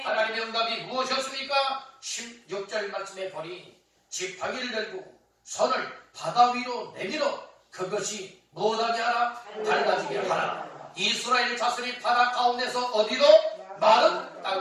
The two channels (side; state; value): both; identical; correlation 1.00